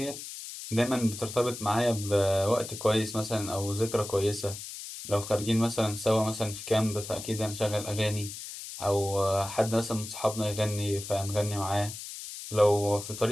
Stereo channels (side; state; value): left; noise; hiss, 10 dB below the sound